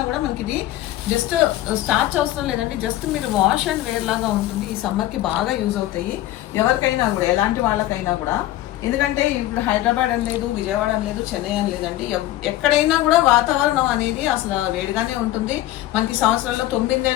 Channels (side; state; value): right; quieter; 15.0 dB